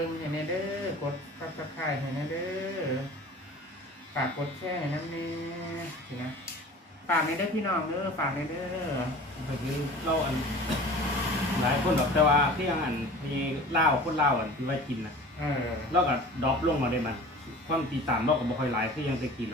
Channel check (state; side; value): normal; both; correlation 0.41